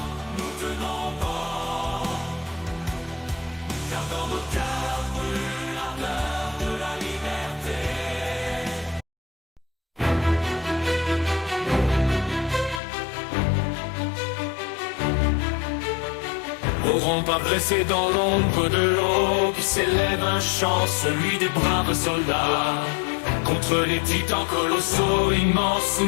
nous tenons bon, car dans nos cœurs brûle l'ardeur de la liberté. N'auront pas blessé dans l'ombre de l'eau qui s'élève un chant, celui des braves soldats. Contre les titans colossaux immenses,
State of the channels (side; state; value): right; drops out; at 12.8 s